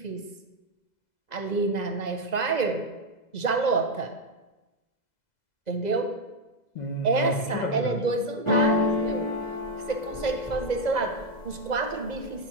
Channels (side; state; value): right; late; 2.0 ms